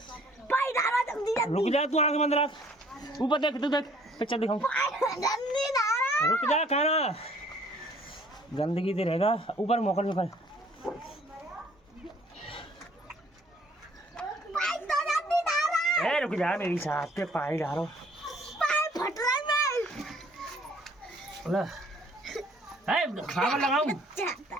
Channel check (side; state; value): both; normal; correlation 0.58